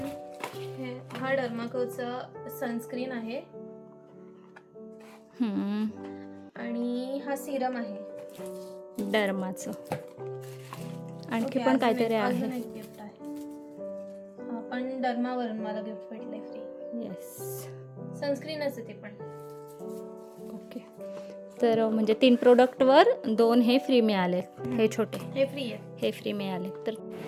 हा डर्माकोचा सनस्क्रीन आहे आणि हा सिरम आहे डर्माचं. आणखी ओके, पण काहीतरी अजून आहे. एक गिफ्ट आहे. हा पण डर्मावरून मला गिफ्ट भेटलंय फ्री. येस. सनस्क्रीनच आहे ते पण. ओके. तर म्हणजे 3 प्रोडक्टवर 2 हे फ्री मिळाले. हे छोटे हे फ्री आहे. हे फ्री मिळाले. तर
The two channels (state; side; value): identical; both; correlation 1.00